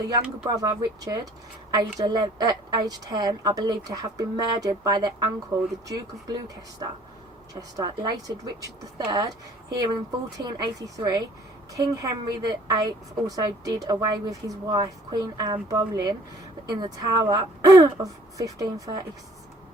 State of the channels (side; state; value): both; normal; correlation 0.55